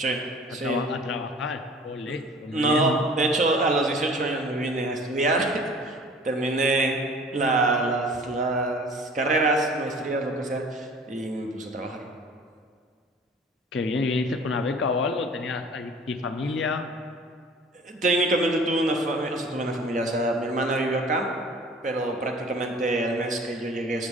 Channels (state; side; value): normal; both; correlation 0.47